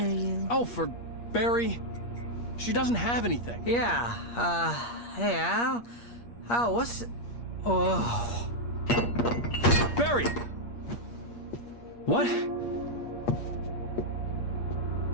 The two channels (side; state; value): right; late; 8.5 ms